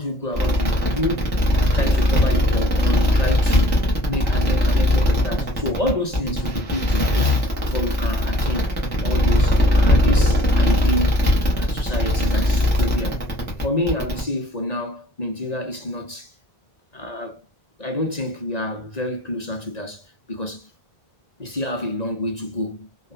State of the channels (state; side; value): late; right; 1.9 ms